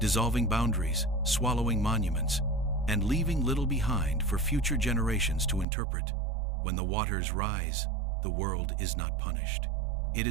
boundaries, swallowing monuments, and leaving little behind for future generations to interpret. When the waters rise, the world is not punished. It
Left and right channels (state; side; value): drops out; left; at 5.7 s